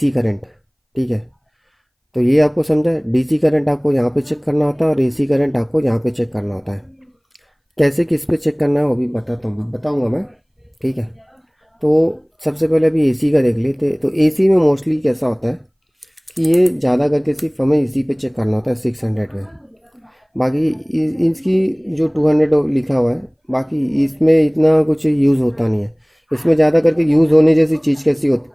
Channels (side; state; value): both; identical; correlation 1.00